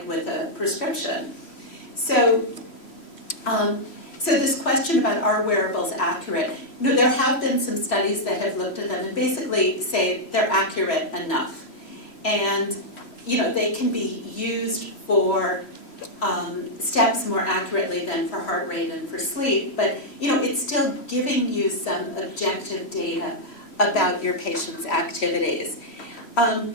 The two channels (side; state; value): right; late; 3.1 ms